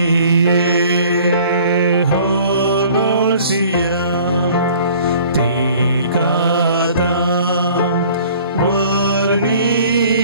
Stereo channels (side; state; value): both; inverted; correlation -0.51